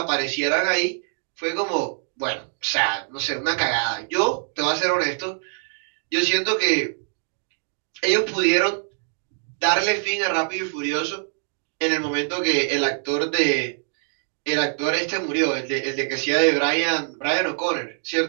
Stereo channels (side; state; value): left; silent; 63 dB below the other